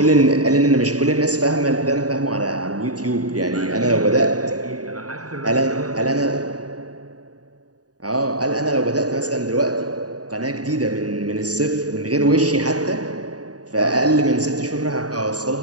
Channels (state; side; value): late; left; 0.68 ms